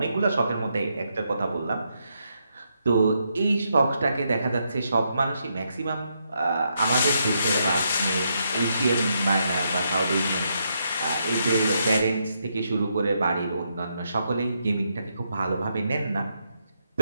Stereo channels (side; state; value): both; inverted; correlation -0.79